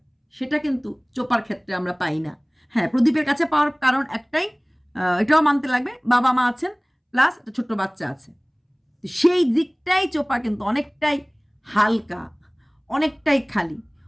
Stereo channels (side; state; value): both; identical; correlation 1.00